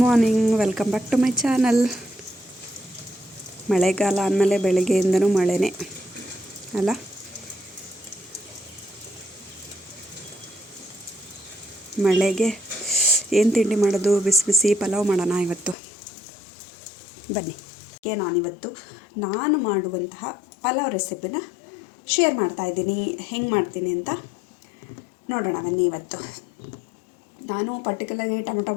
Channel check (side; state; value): right; drops out; at 15.8 s